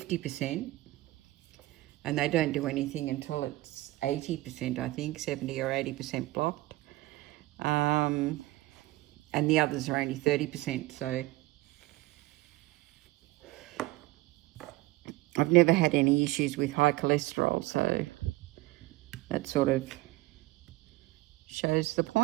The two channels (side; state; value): left; quieter; 19.5 dB